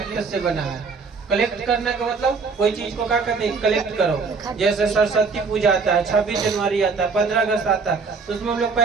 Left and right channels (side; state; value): left; quieter; 4.8 dB